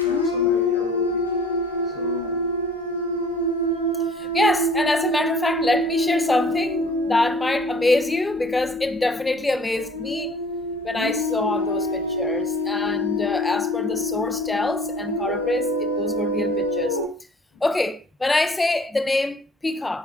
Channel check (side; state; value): both; normal; correlation 0.51